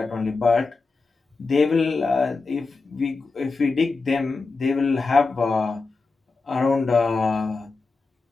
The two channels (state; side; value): quieter; right; 4.0 dB